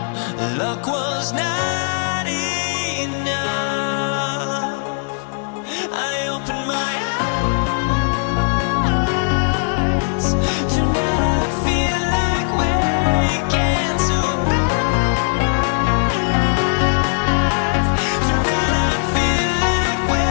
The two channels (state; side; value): silent; right; 64 dB below the other